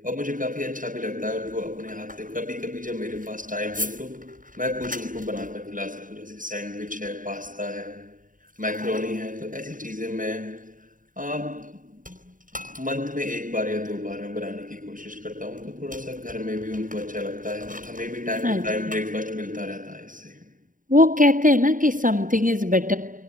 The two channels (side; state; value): left; late; 0.39 ms